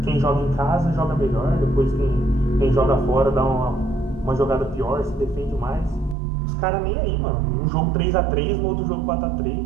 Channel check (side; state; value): left; drops out; at 6.2 s